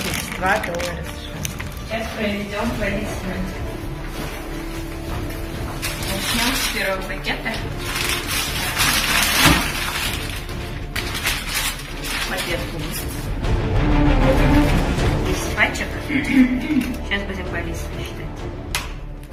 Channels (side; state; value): both; identical; correlation 1.00